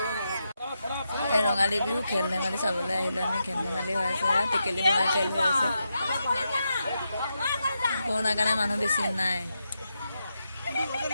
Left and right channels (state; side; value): inverted; both; correlation -0.86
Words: এই ৰঙালী বিহু খেল ধেমালি চাবলৈ আহিলোঁ আমি। খেল ধেমালি হৈ আছে, টেকেলি ভঙা খেল হৈ আছে। কৰোণাৰ কাৰণে মানুহ বেছি নাই।